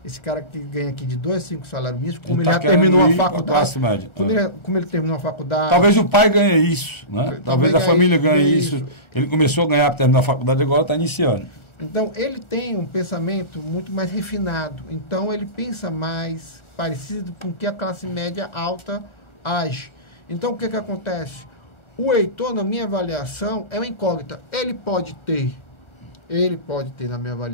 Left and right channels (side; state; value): right; late; 1.4 ms